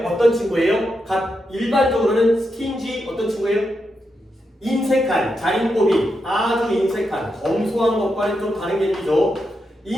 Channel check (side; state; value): both; normal; correlation 0.85